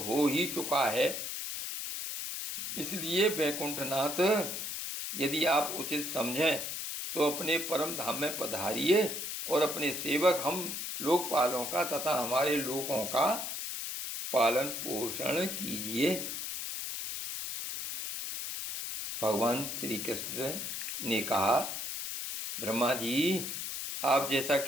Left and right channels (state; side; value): noise; left; hiss, 4 dB below the sound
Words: ही चुका है। इसलिए वैकुंठनाथ, यदि आप उचित समझें तो अपने परम धाम में पधारिए और अपने सेवक हम लोकपालों का तथा हमारे लोगों का पालन पोषण कीजिए। भगवान श्री कृष्ण ने कहा, ब्रह्मा जी, आप जैसा